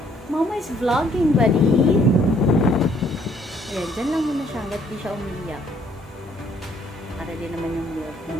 Mama is vlogging, buddy. Ayan, dyan lang muna siya hanggat di siya umiyak. Para din naman yung milk.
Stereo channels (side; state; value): both; normal; correlation 0.64